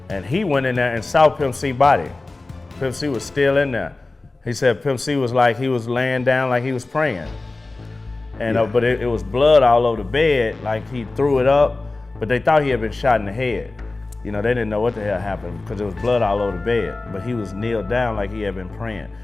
And he went in there and saw Pimp C's body. Pimp C was still in there. He said Pimp C was like, he was laying down like he was praying. And but it was blood all over the bed, like he threw it up, but they thought he had been shot in the head. You know, they didn't know what the hell happened because there was blood all over the bed, but he was kneeled down like he had been praying.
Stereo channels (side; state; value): right; quieter; 3.2 dB